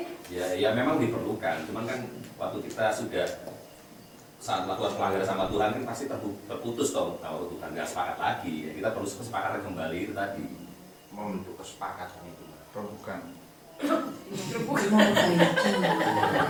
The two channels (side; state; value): both; identical; correlation 1.00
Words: Ya memang diperlukan. Cuman kan waktu kita sudah saat melakukan pelanggaran sama Tuhan kan pasti terputus dong kalau Tuhan nggak sepakat lagi. Ya, kita perlu kesepakatan kembali itu tadi. Membentuk kesepakatan itu, bukan. Memperbaiki.